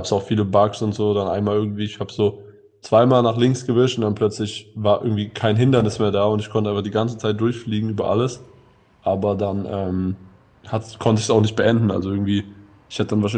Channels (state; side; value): identical; both; correlation 1.00